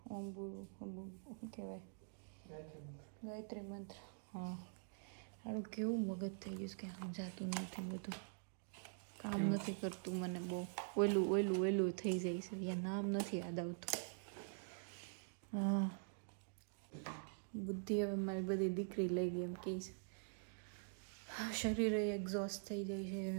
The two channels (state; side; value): silent; left; digital silence